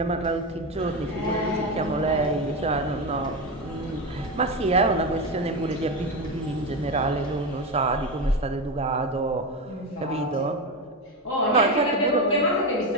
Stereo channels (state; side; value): normal; both; correlation 0.16